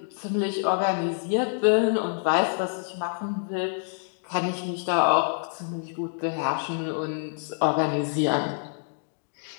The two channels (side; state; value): right; silent; digital silence